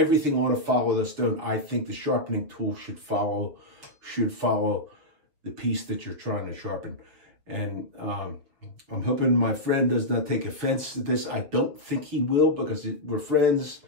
ought to follow the stone. I think the sharpening tool should follow the piece that you're trying to sharpen. And I'm hoping my friend does not take offense to this. I don't think he will, because we're friends.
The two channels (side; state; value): left; late; 6.9 ms